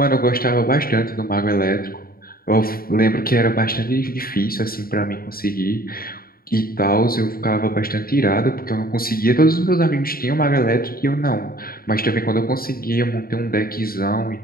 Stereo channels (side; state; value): right; late; 0.43 ms